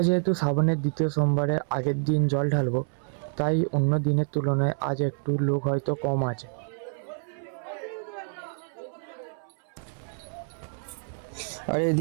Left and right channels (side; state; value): left; silent; 59 dB below the other